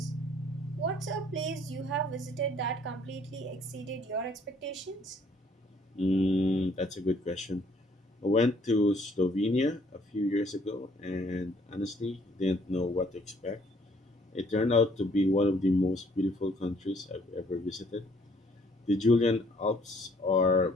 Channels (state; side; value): normal; both; correlation 0.62